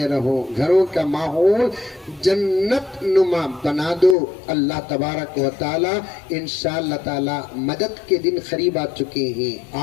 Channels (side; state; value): right; drops out; at 4.2 s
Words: رہو، گھروں کا ماحول جنت نما بنا دو. اللہ تبارک و تعالی انشاءاللہ تعالی مدد کے دن قریب آ چکے ہیں.